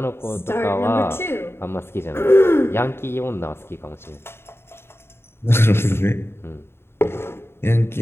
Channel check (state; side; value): late; right; 0.12 ms